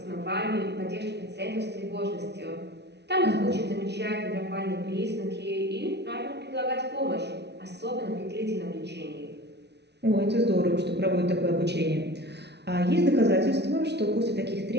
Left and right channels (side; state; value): left; late; 0.50 ms